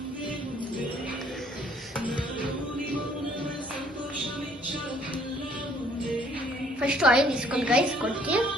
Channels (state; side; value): normal; both; correlation 0.61